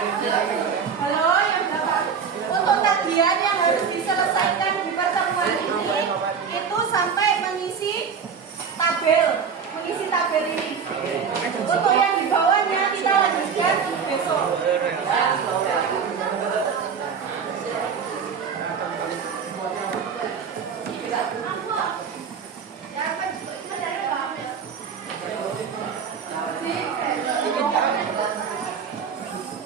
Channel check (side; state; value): left; quieter; 6.5 dB